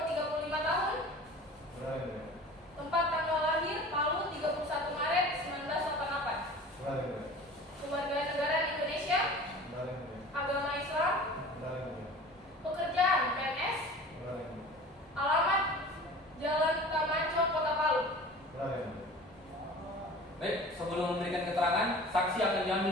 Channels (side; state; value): both; normal; correlation 0.41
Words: 35 tahun. Benar yang mulia. Tempat tanggal lahir Palu 31 Maret 1988. Benar yang mulia. Keluarga negara Indonesia. Benar yang mulia. Agama Islam. Benar yang mulia. Pekerjaan PNS. Benar yang mulia. Alamat Jalan Tamanco, Kota Palu. Benar yang mulia. Baik, sebelum memberikan keterangan, saksi akan